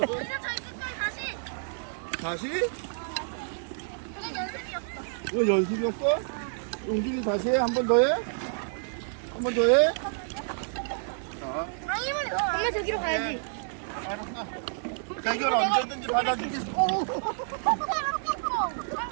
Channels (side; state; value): left; silent; digital silence